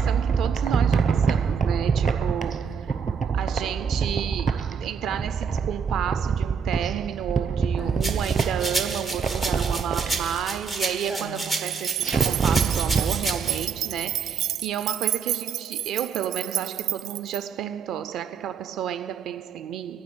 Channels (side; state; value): left; quieter; 6.5 dB